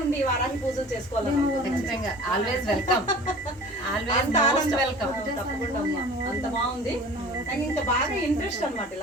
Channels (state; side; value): normal; both; correlation 0.43